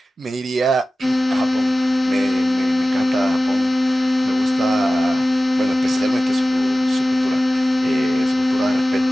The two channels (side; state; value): both; normal; correlation 0.96